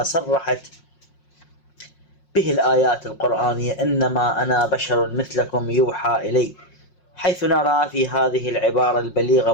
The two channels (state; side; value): late; right; 5.5 ms